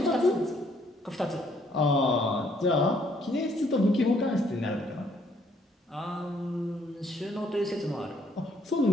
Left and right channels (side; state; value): both; normal; correlation 0.67